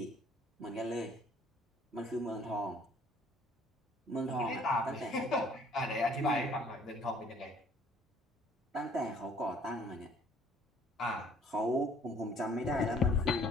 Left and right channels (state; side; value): normal; both; correlation 0.58